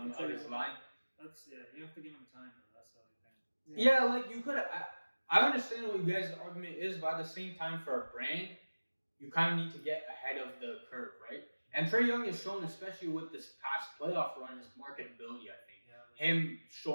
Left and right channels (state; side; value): inverted; both; correlation -1.00